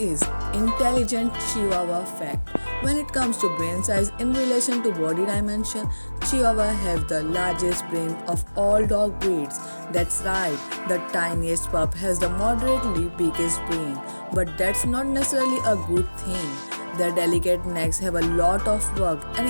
intelligent Chihuahua fact. When it comes to brain size in relation to body dimension, Chihuahua have the largest brain of all dog breeds. That's right, the tiniest pup has the moderately biggest brain. But that's not necessarily a good thing. Their delicate necks have a lot of work, and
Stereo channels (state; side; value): inverted; both; correlation -1.00